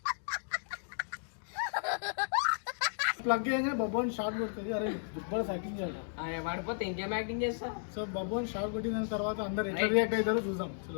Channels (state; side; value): silent; right; digital silence